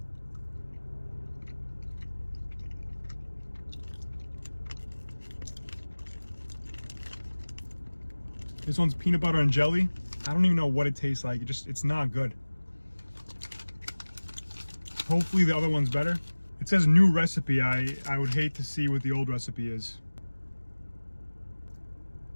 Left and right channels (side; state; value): both; inverted; correlation -1.00